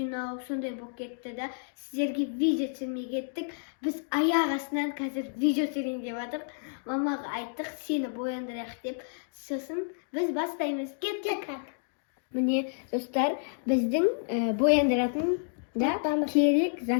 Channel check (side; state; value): right; silent; digital silence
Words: сондай болып кетті да. Сіздерге видео түсірмей кеттік. Біз аяқ астынан қазір видео түсірейін деп жатырмық. Мамаға айттық, сені бояндырайық деп. Сосын біз бастаймыз. Кеттік. Міне, достар, біздің бояндыратын да керек